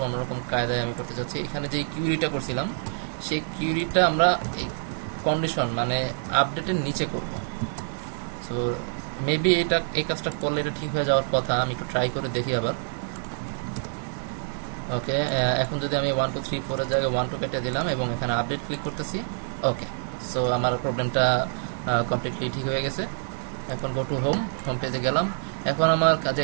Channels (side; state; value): left; silent; 61 dB below the other